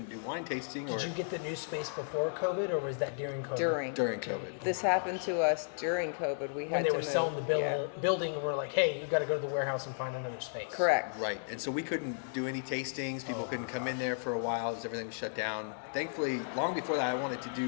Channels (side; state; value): right; silent; 55 dB below the other